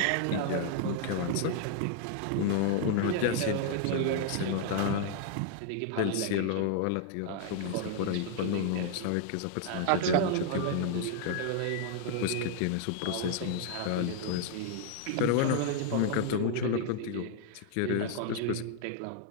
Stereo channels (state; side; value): different; both; correlation 0.00